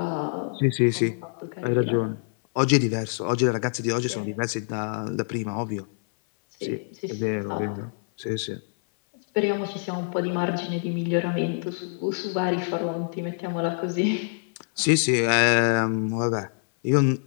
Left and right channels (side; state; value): right; silent; 59 dB below the other